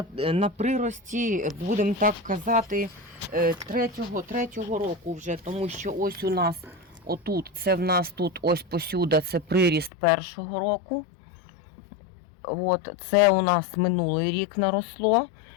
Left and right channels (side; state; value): right; drops out; at 9.9 s